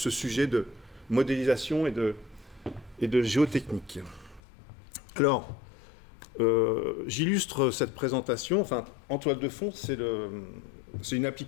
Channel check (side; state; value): right; drops out; at 4.4 s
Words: sujet de modélisation et de géotechnique. Alors, j'illustre cette présentation. Enfin, en toile de fond, c'est une